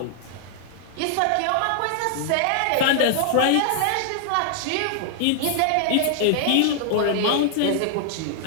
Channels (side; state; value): both; different; correlation 0.00